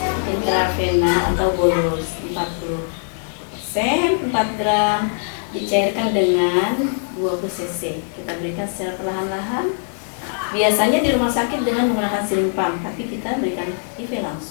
intravena atau bolus 40 4 gram dicairkan dengan 20 cc. Kita berikan secara perlahan-lahan. Biasanya di rumah sakit dengan menggunakan siring pump, tapi kita berikan IV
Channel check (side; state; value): right; silent; digital silence